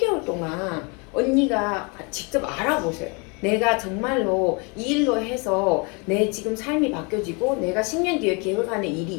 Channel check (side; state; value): right; quieter; 31.7 dB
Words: 동안 언니가 직접 알아보세요. 내가 정말로 이 일로 해서 내 지금 삶이 바뀌어지고 내가 10년 뒤에 계획하는 일이